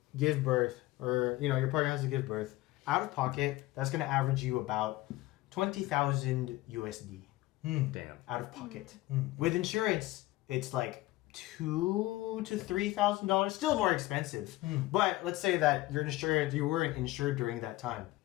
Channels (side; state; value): right; quieter; 18.1 dB